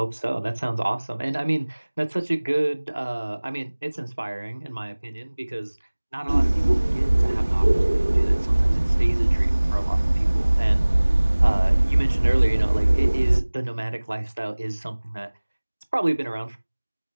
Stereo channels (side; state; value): both; inverted; correlation -1.00